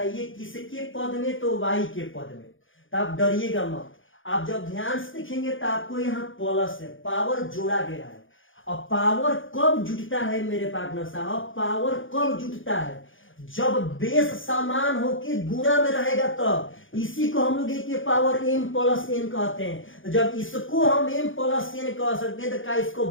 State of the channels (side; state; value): right; late; 0.58 ms